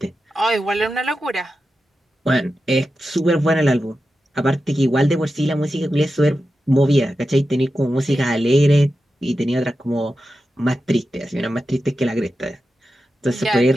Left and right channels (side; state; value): both; normal; correlation 0.91